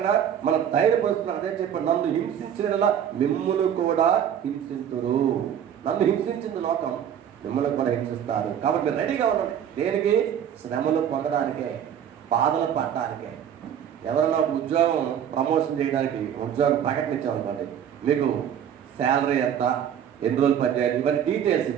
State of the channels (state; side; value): quieter; left; 9.2 dB